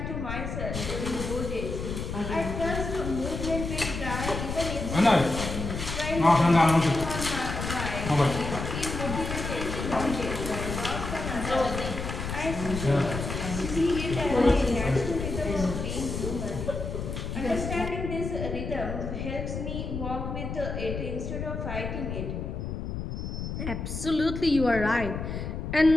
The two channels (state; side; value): noise; left; rumble, 5 dB below the sound